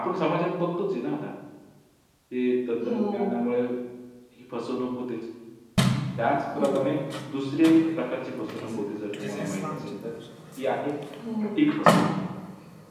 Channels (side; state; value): both; identical; correlation 1.00